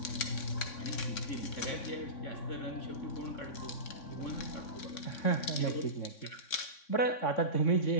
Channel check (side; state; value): right; late; 3.6 ms